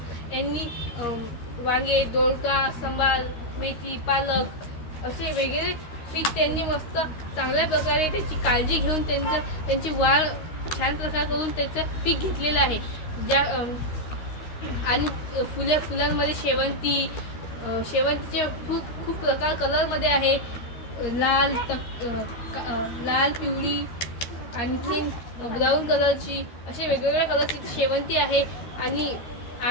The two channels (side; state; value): right; late; 13 ms